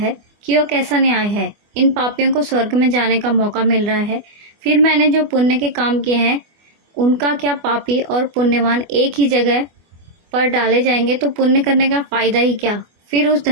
कि वह कैसा न्याय है, इन पापियों को स्वर्ग में जाने का मौका मिल रहा है, फिर मैंने जो पुण्य के काम किए हैं उनका क्या पापी और पुण्यवान एक ही जगह पर डाले जाएंगे तो पुण्य करने का फायदा ही क्या। फिर उस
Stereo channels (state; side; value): late; left; 24 ms